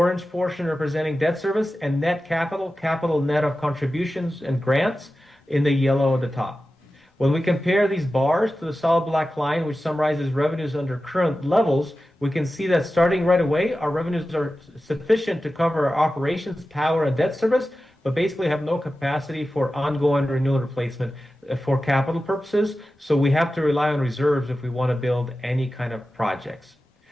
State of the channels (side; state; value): both; normal; correlation 0.94